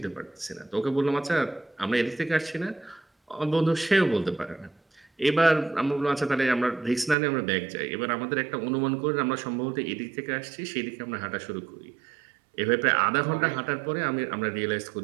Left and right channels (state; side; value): drops out; left; at 7.2 s